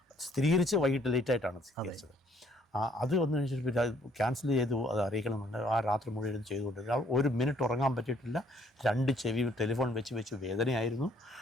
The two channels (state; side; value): normal; both; correlation 0.64